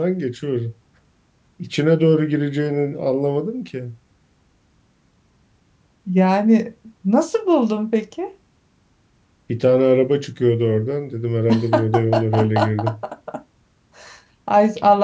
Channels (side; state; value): both; identical; correlation 1.00